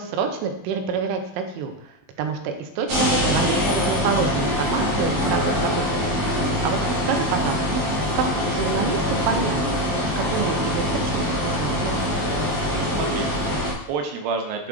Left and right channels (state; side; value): late; left; 21 ms